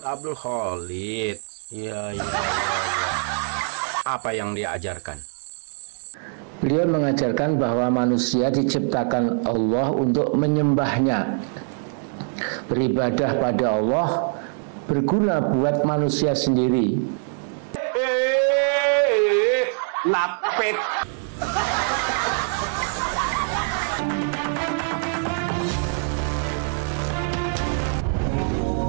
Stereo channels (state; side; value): silent; left; 62 dB below the other